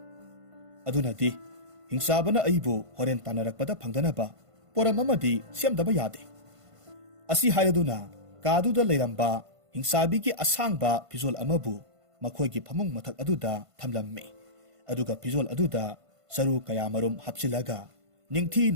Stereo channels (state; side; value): late; left; 1.5 ms